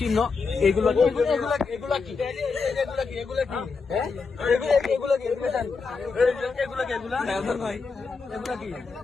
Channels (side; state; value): right; quieter; 4.7 dB